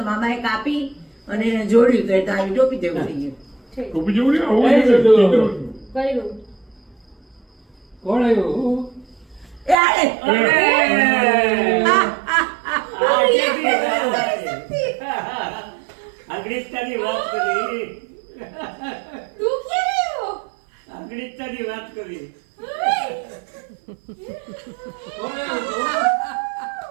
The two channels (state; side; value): drops out; left; at 9.8 s